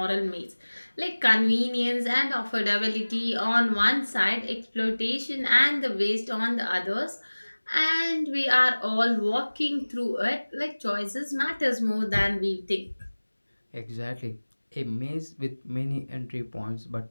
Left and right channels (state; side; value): inverted; both; correlation -1.00